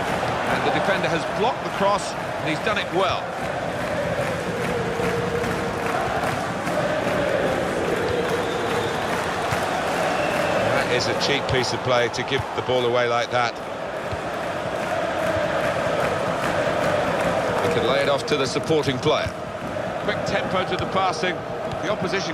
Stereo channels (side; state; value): both; identical; correlation 1.00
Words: And the defender has blocked the cross, and he's done it well. Is a cheap piece of play to give the ball away like that. He can lay it off to the supporting player. Quick tempo to the passing. The